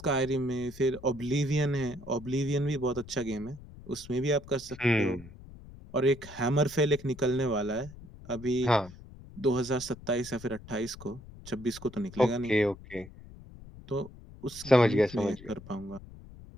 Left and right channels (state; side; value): noise; left; rumble, 17 dB below the sound